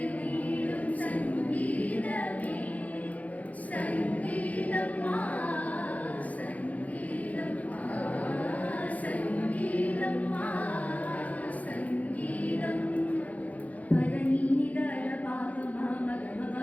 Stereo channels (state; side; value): late; right; 0.072 ms